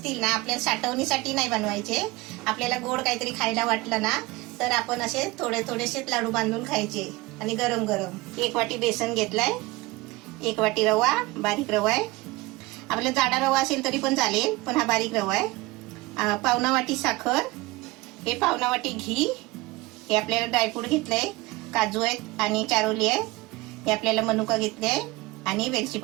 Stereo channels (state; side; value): quieter; left; 21.6 dB